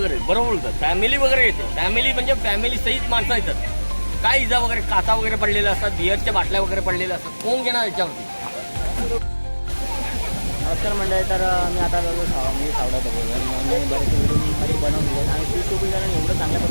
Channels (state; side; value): inverted; both; correlation -1.00